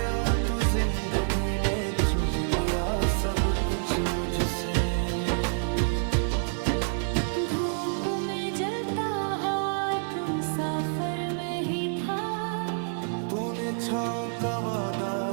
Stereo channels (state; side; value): silent; left; 60 dB below the other